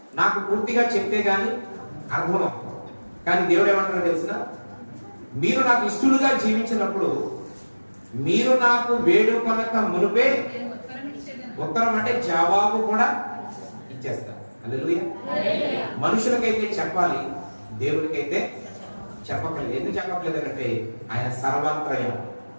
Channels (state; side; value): inverted; both; correlation -1.00